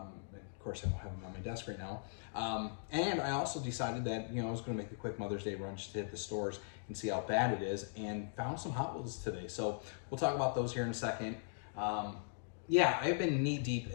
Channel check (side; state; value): right; silent; digital silence